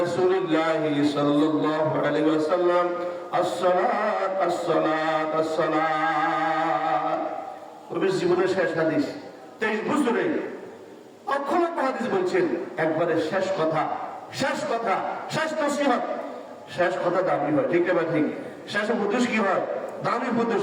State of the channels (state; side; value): identical; both; correlation 1.00